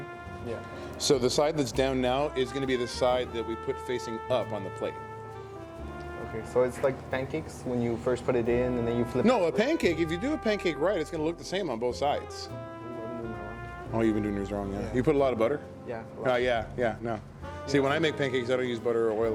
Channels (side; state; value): both; identical; correlation 1.00